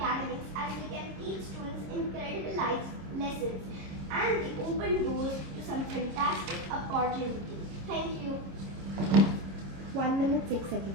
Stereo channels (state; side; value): late; left; 26 ms